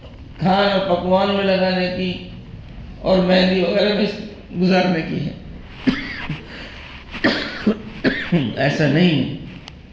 کھانا پکوان میں لگانے کی اور مہندی وغیرہ میں گزارنے کی ہے. ایسا نہیں ہے.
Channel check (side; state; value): both; identical; correlation 1.00